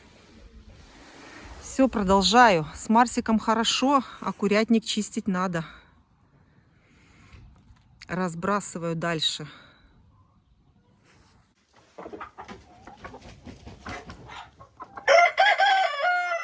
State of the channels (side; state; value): both; identical; correlation 1.00